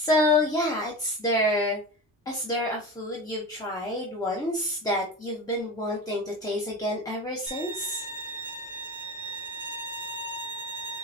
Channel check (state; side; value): normal; both; correlation 0.28